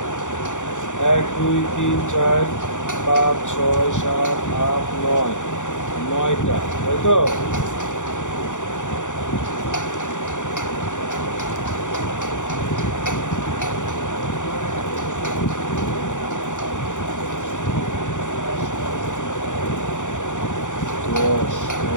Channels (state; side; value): late; right; 0.86 ms